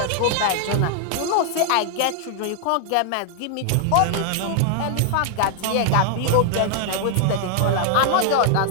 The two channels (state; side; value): different; both; correlation 0.00